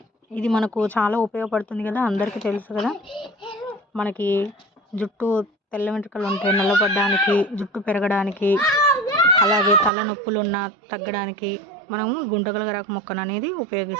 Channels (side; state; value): left; drops out; at 9.9 s